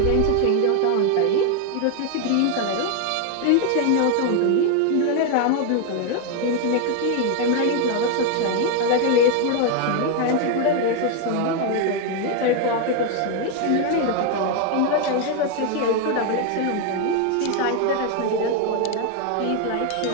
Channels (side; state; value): both; different; correlation 0.01